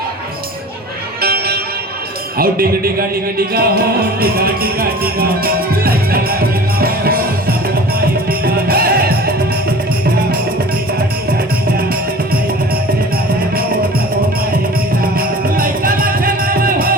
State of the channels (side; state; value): both; normal; correlation 0.41